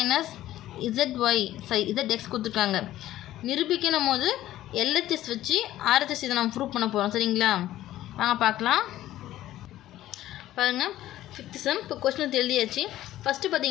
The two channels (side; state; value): right; quieter; 14.1 dB